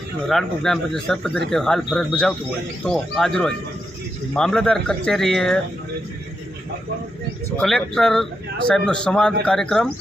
રાણપુર ગ્રામ પંચાયત સરપંચ તરીકે હાલ ફરજ બજાવતું હોય તો આજરોજ મામલતદાર કચેરીએ કલેક્ટર સાહેબનો સંવાદ કાર્યક્રમ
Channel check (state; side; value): normal; both; correlation 0.84